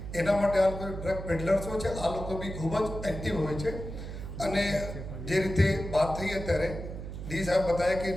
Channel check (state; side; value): noise; right; hum, 8 dB below the sound